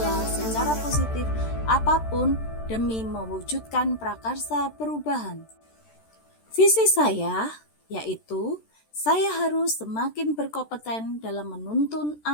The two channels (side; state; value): right; late; 13 ms